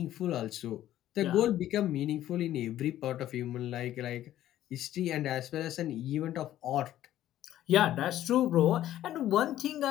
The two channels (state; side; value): quieter; right; 12.9 dB